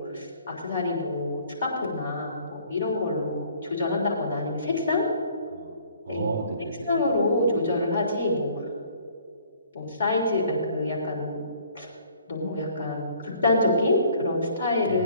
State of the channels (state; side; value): inverted; both; correlation -0.57